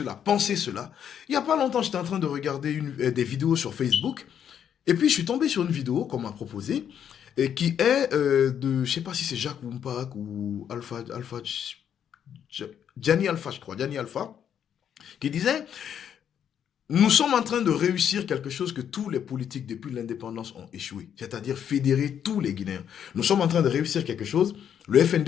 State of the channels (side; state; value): right; quieter; 8.9 dB